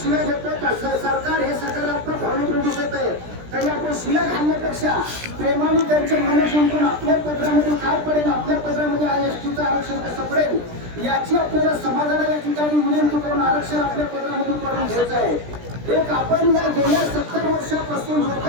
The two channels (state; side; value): late; left; 17 ms